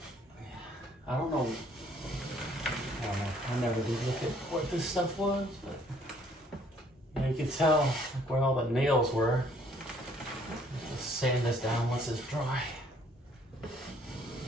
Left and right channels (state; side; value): normal; both; correlation 0.62